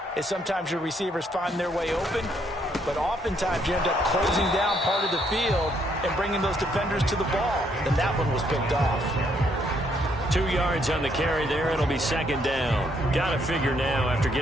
is sometimes your receivers find their way open, but oftentimes you end up closing down part of the field and bringing those defenders to the ball. And that one was picked off. 2 yards on the carry there. It'll be second down. Got to figure now, after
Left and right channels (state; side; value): normal; both; correlation 0.71